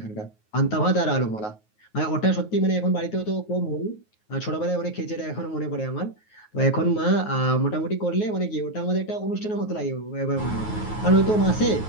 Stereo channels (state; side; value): late; right; 9.4 ms